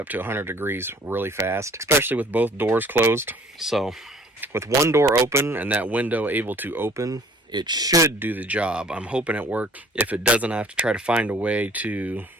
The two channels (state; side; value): normal; both; correlation 0.54